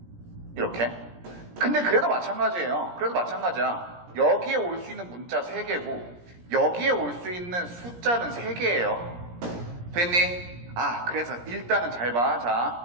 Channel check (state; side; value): late; left; 17 ms